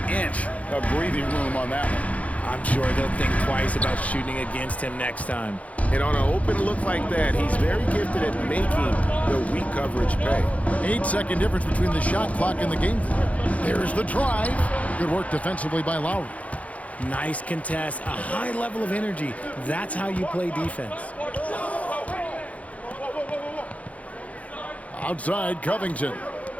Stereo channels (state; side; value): late; right; 0.067 ms